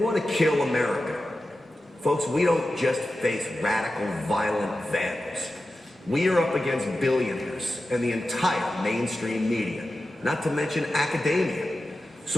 to kill America. Folks, we don't just face radical, violent vandals. We are up against billionaires and the entire mainstream media, not to mention academia.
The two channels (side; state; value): both; normal; correlation 0.93